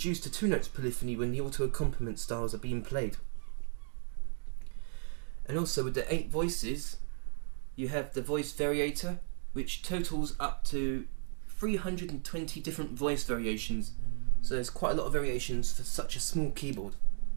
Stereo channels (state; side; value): silent; left; 55 dB below the other